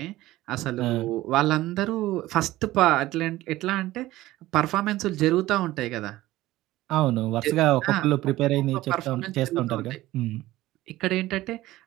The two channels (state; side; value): quieter; left; 16.7 dB